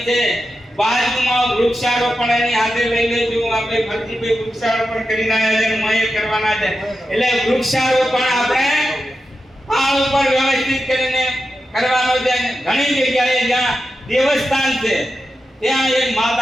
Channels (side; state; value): both; normal; correlation 0.90